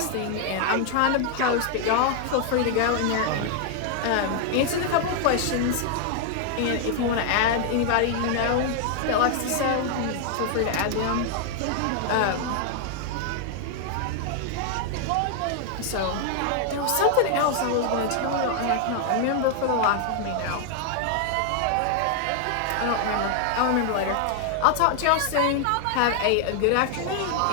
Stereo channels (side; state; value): both; different; correlation 0.00